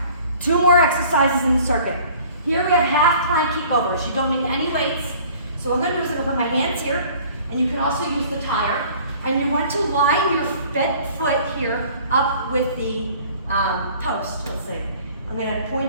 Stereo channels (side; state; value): both; inverted; correlation -0.50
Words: 2 more exercises in the circuit. Here we have half plank kickovers. You don't need any weights. So what I'm gonna do is I'm gonna put my hands here, and you can also use the tire. And you want to line your foot here up with the post, let's see. I'm gonna